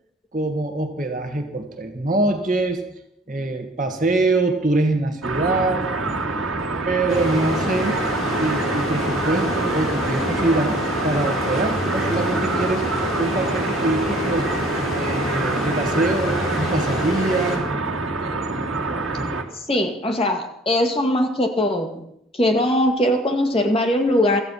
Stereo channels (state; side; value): normal; both; correlation 0.53